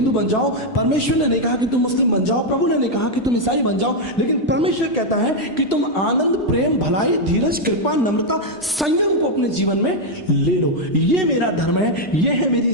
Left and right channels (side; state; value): both; normal; correlation 0.00